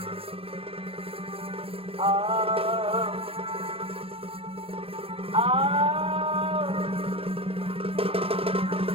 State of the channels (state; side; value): late; left; 0.27 ms